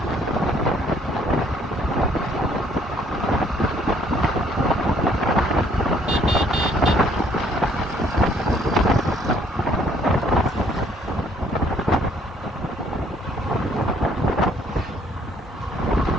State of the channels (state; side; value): normal; both; correlation 0.63